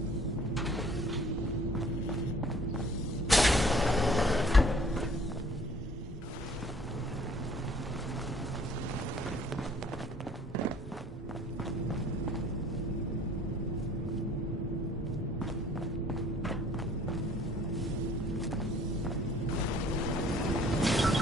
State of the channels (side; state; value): both; normal; correlation 0.55